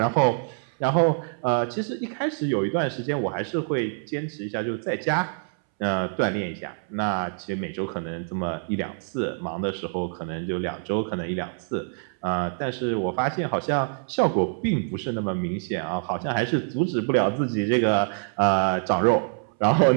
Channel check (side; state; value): left; silent; 61 dB below the other